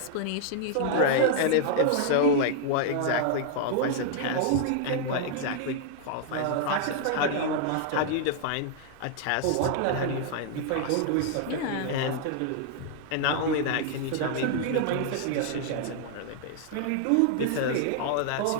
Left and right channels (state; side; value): different; both; correlation -0.01